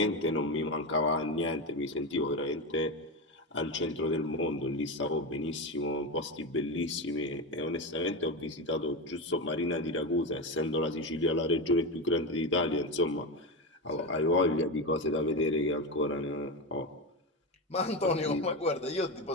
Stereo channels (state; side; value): normal; both; correlation 0.16